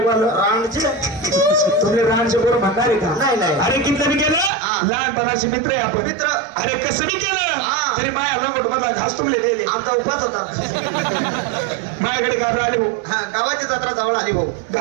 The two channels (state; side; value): drops out; left; at 4.5 s